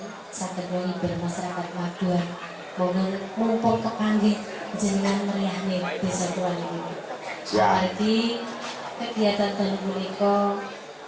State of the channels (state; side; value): identical; both; correlation 1.00